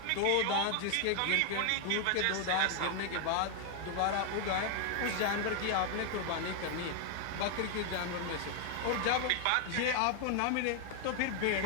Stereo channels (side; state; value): both; different; correlation 0.00